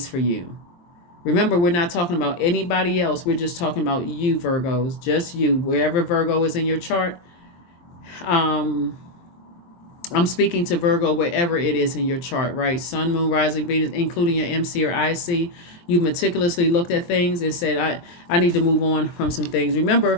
for you. Remember, we're not talking about anybody else. We're just talking about you, Virgos, just you. Wherever Virgo is in your chart, I'm speaking to Virgo wherever it is in your chart, right? Sun, Moon, Rising, Venus, including your MC or IC. You meticulously looked at things and said, I need to move on from some things.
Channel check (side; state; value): right; late; 23 ms